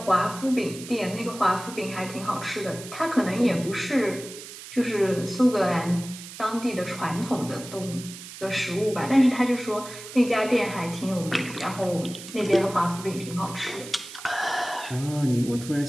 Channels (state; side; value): noise; right; hiss, 13 dB below the sound